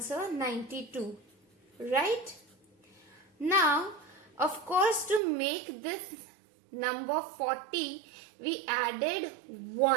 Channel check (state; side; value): drops out; left; at 5.2 s